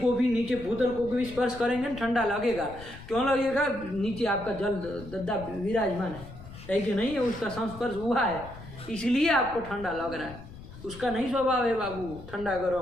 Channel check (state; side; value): noise; left; rumble, 15 dB below the sound